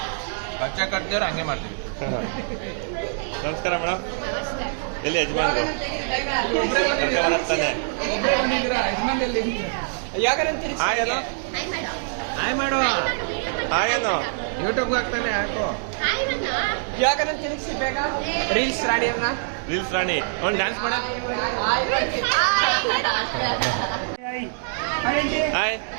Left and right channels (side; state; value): left; silent; digital silence